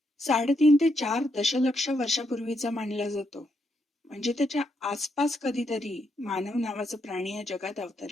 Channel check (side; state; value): both; normal; correlation 0.79